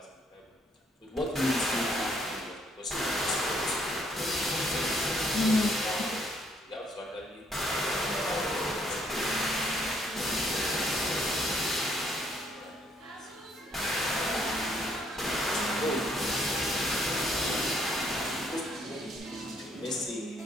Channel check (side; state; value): both; normal; correlation 0.68